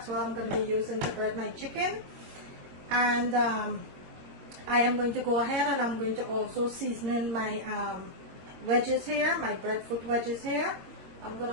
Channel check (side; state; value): left; late; 21 ms